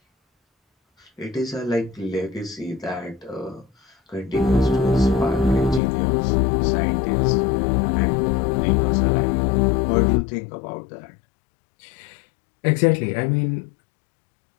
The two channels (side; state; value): right; drops out; at 5.8 s